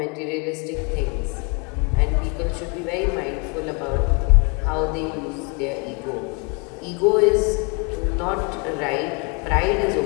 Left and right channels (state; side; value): quieter; right; 32.4 dB